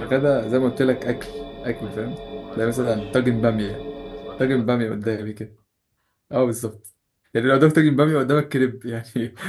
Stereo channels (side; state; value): both; identical; correlation 1.00